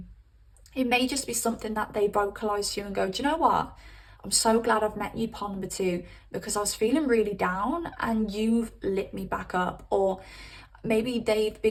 It may just be something that they vocalize to you and go, do you know what? I'm so glad I've met you, pile number two, because I was feeling really down and you've lit me back up. Or maybe they've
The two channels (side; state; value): both; identical; correlation 1.00